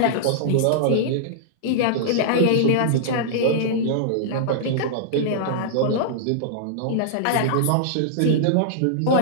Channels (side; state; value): both; different; correlation -0.02